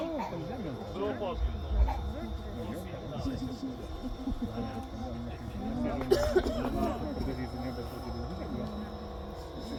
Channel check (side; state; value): both; identical; correlation 1.00